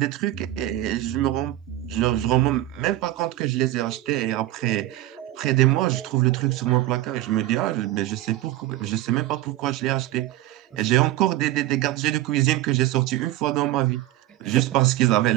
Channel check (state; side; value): quieter; left; 15.1 dB